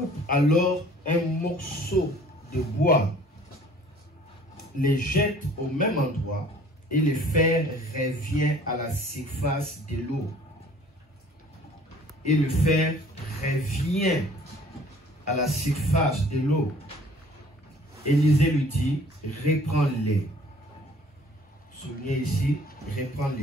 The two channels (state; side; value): normal; both; correlation 0.53